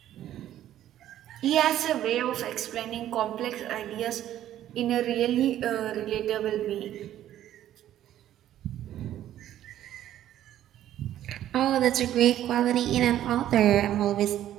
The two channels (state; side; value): quieter; left; 12.1 dB